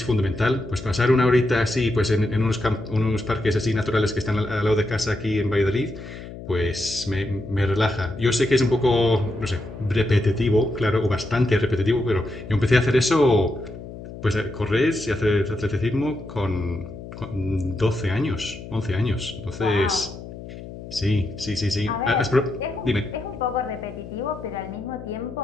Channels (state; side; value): noise; left; hum, 13 dB below the sound